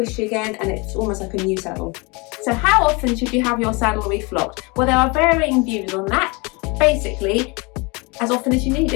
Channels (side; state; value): right; quieter; 28.2 dB